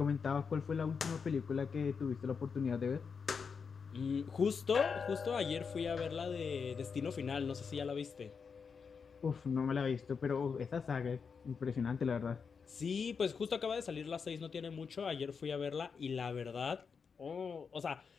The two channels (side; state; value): right; quieter; 5.8 dB